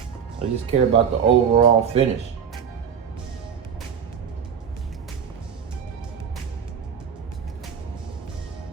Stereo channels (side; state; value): left; quieter; 7.5 dB